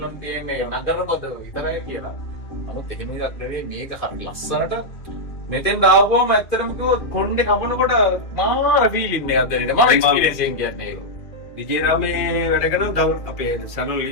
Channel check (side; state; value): right; late; 2.4 ms